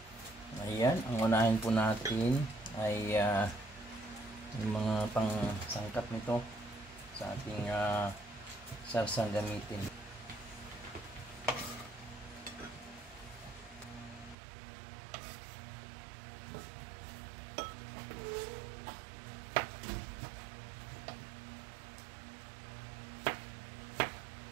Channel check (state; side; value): drops out; left; at 14.4 s